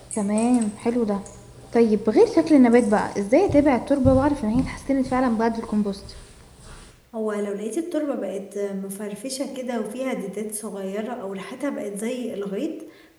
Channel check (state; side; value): identical; both; correlation 1.00